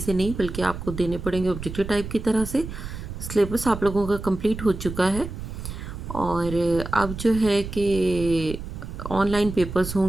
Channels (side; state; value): right; noise; rumble, 9 dB below the sound